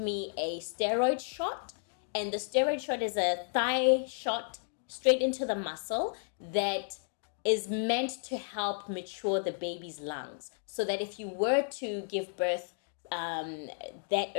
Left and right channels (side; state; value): right; silent; digital silence